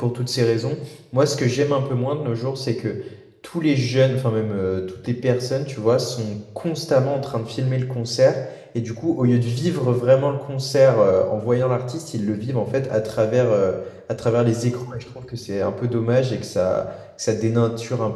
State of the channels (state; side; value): identical; both; correlation 1.00